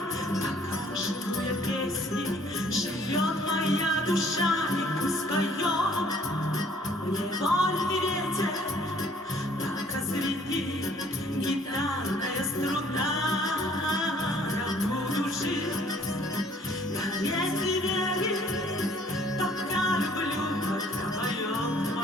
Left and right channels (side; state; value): both; normal; correlation 0.59